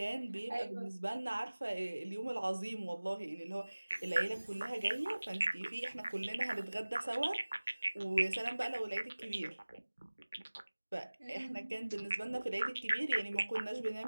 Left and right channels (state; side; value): inverted; both; correlation -1.00